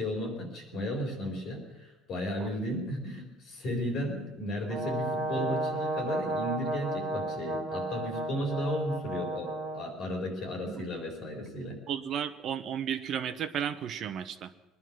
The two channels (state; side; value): normal; both; correlation 0.56